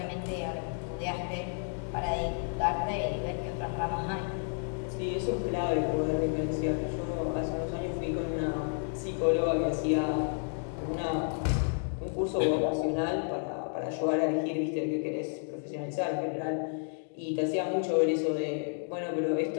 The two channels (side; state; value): right; silent; 57 dB below the other